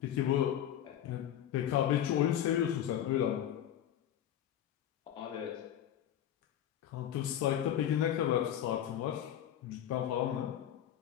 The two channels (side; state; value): right; quieter; 10.8 dB